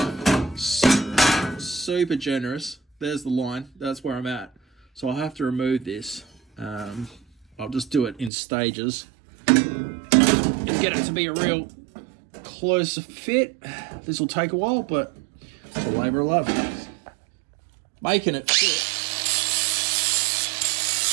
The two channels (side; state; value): left; drops out; at 8.3 s